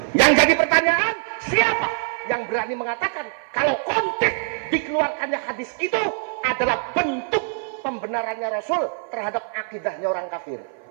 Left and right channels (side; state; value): left; silent; 57 dB below the other